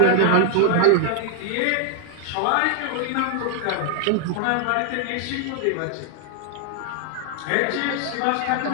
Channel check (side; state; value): both; different; correlation 0.00